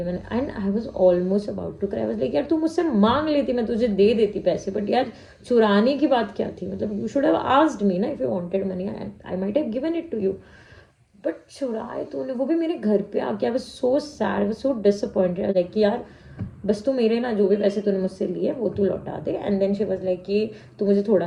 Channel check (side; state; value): both; identical; correlation 1.00